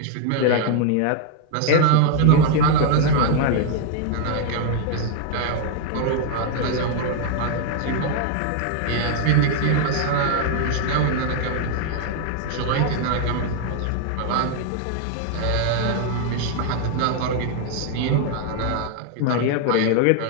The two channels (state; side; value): different; both; correlation 0.00